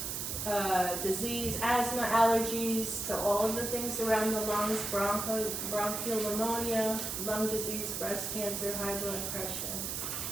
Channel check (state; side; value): noise; right; hiss, 3 dB below the sound